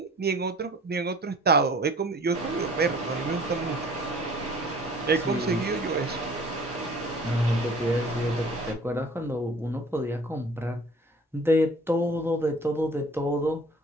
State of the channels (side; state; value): both; normal; correlation 0.49